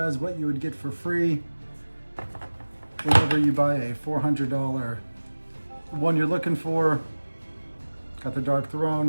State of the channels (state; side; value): inverted; both; correlation -1.00